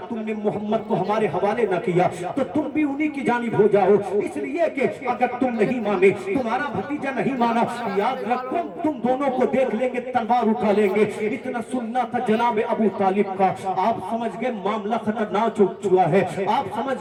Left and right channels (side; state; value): both; identical; correlation 1.00